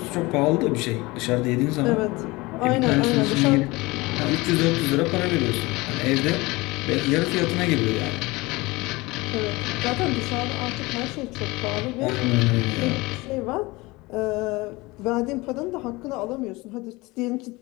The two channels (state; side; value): quieter; right; 22.6 dB